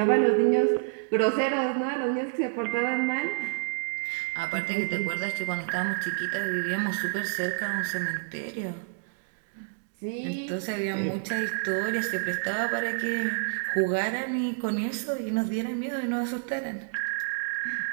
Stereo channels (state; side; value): silent; left; digital silence